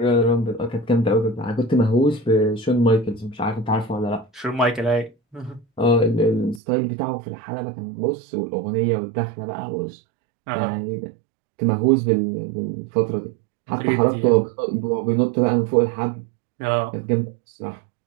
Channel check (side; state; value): left; drops out; at 6.6 s